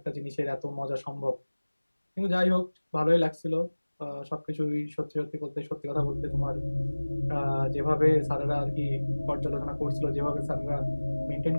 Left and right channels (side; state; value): both; inverted; correlation -1.00